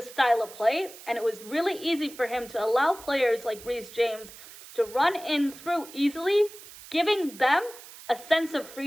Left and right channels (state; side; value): noise; right; hiss, 17 dB below the sound